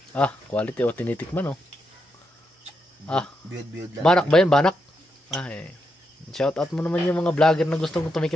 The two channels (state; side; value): normal; both; correlation 0.83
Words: Quality o tinitikman oh. Biyod lang. Banak ba yan? Banak? Shout out mo naman yung mga vlogger na gustong